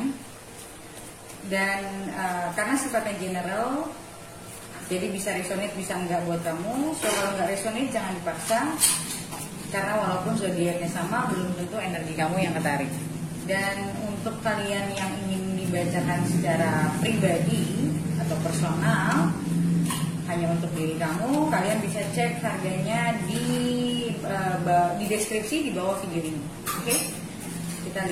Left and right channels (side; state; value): both; identical; correlation 1.00